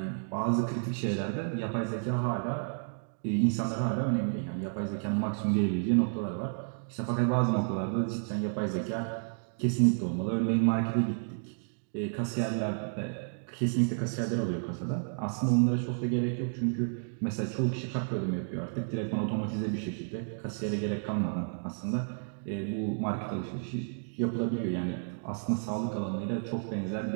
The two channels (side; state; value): left; silent; digital silence